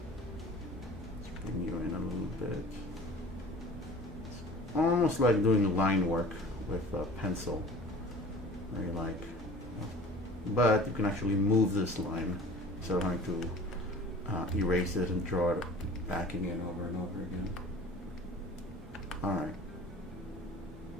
let's bring you in a little bit. It's almost like doing line work with a pencil. Very like, but you can actually move this line instead of having to erase it and draw it back again over and over again. Alright.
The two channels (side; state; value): both; normal; correlation 0.44